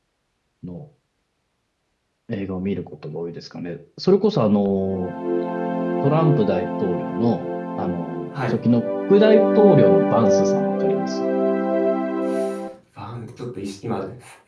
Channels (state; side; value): identical; both; correlation 1.00